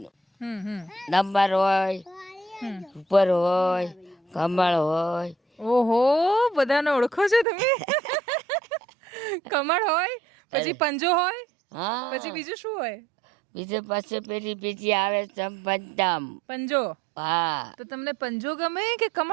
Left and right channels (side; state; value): left; drops out; at 7.5 s